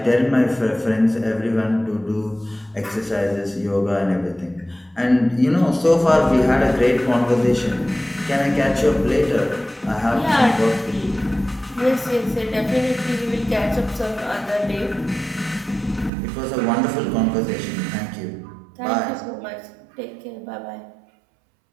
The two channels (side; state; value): left; drops out; at 16.1 s